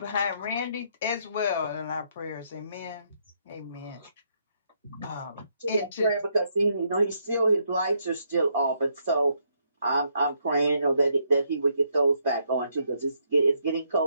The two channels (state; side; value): inverted; both; correlation -0.74